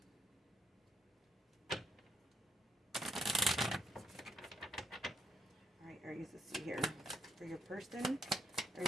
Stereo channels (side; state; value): both; normal; correlation 0.73